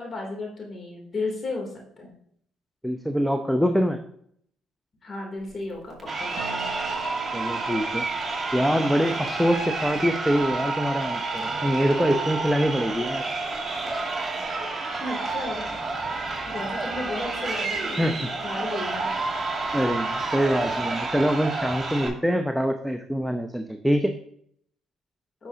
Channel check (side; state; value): both; normal; correlation 0.90